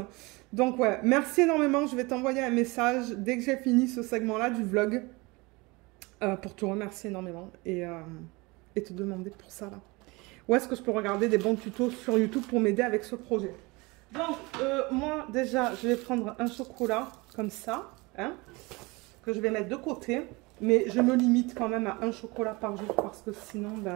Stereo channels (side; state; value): left; quieter; 24.8 dB